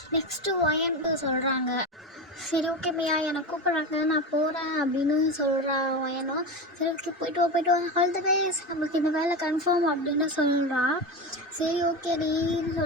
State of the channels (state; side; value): normal; both; correlation 0.21